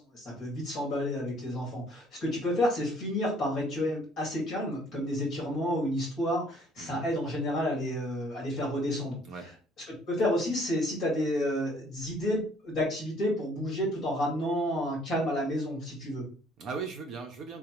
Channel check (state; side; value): normal; both; correlation 0.60